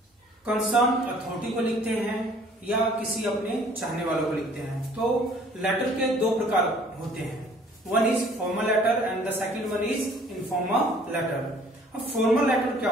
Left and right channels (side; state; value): both; normal; correlation 0.56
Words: कंसर्न अथॉरिटी को लिखते हैं या किसी अपने चाहने वालों को लिखते हैं। तो लेटर के दो प्रकार होते हैं, one is formal letter and the second one is informal letter. अब फॉर्मल लेटर क्या